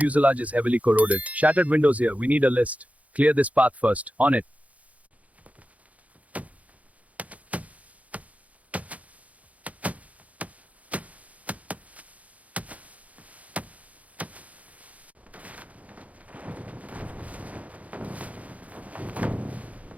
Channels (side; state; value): left; late; 0.069 ms